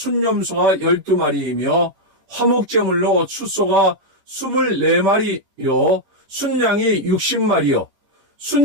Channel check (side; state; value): left; late; 10 ms